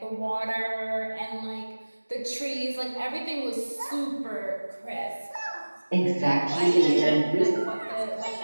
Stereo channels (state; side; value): inverted; both; correlation -1.00